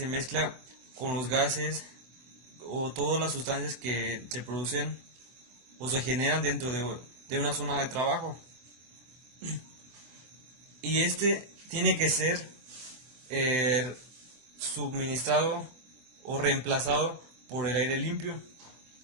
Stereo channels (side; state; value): left; late; 24 ms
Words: mezcla con los gases o todas las sustancias que se producen o se generan dentro de una zona de trabajo. Y este tiene que ser eh, suministrado o reemplazado por el aire limpio.